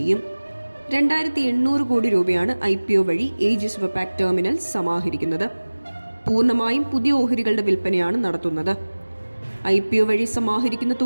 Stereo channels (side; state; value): both; inverted; correlation -1.00